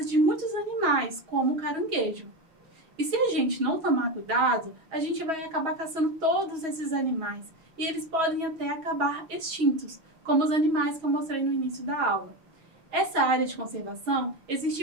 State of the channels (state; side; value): late; left; 6.3 ms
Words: de muitos animais, como o caranguejo. E se a gente não tomar cuidado, a gente vai acabar caçando todos esses animais, e eles podem até acabar extintos, como os animais que eu mostrei no início da aula. Essa área de conservação